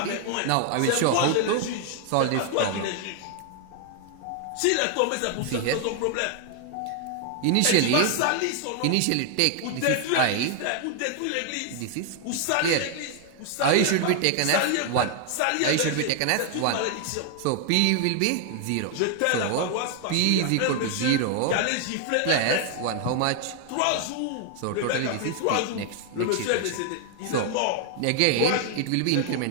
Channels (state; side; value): different; both; correlation 0.00